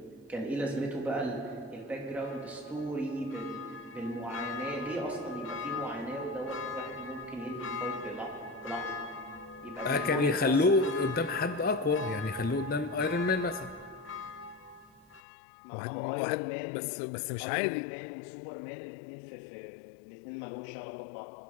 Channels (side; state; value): right; drops out; at 15.2 s